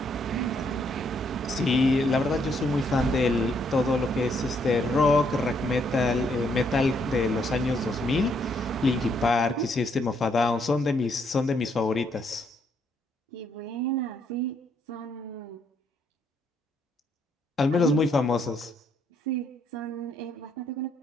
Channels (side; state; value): both; normal; correlation 0.72